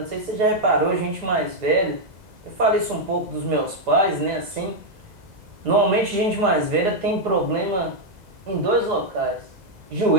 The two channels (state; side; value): late; left; 2.0 ms